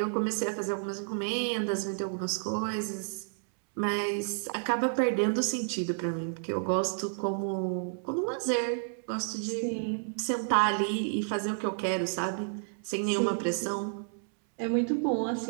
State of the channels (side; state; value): left; silent; 57 dB below the other